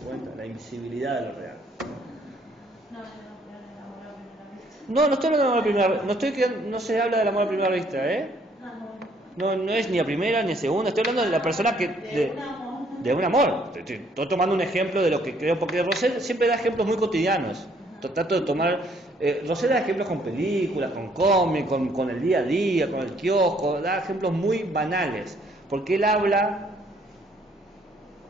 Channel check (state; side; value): normal; both; correlation 0.65